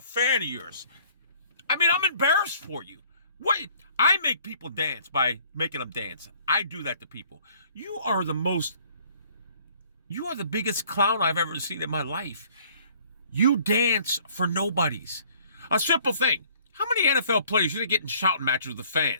of yours. I mean, I'm embarrassed for you. What? I make people dance by making them dance. I do that to people. You are the biggest clown I've ever seen in my life. You dance for nobodies. A simple thing. How many NFL players you think get in shouting matches with the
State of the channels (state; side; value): inverted; both; correlation -0.58